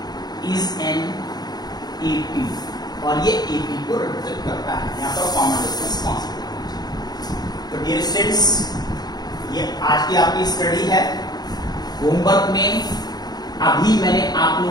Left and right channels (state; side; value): late; right; 0.19 ms